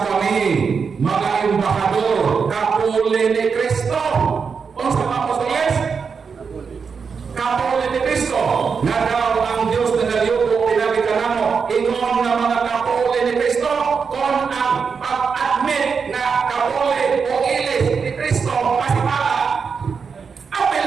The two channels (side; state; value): left; quieter; 5.7 dB